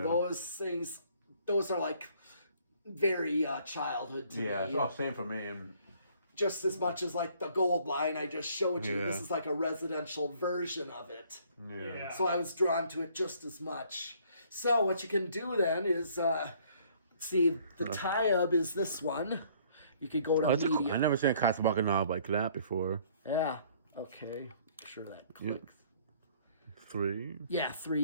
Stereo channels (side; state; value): both; inverted; correlation -0.60